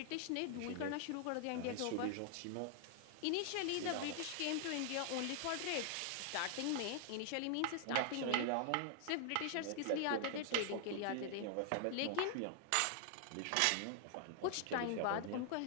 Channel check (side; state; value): both; different; correlation 0.00